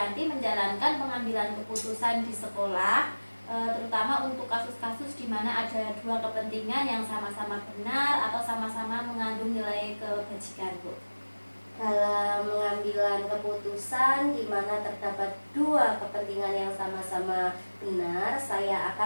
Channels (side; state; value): both; inverted; correlation -1.00